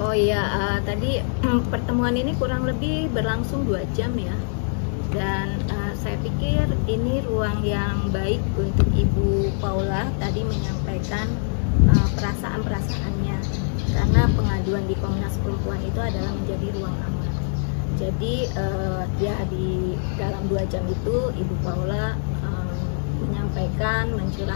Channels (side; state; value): right; silent; 63 dB below the other